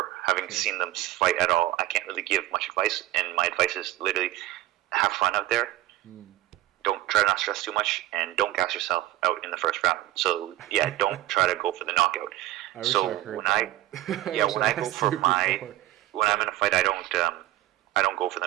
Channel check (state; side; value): quieter; left; 15.4 dB